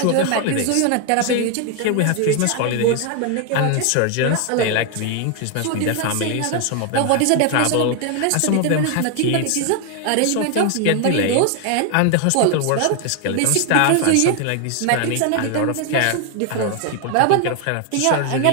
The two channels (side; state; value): both; different; correlation 0.00